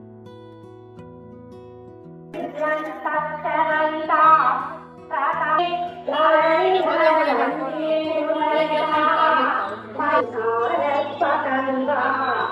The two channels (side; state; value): both; identical; correlation 1.00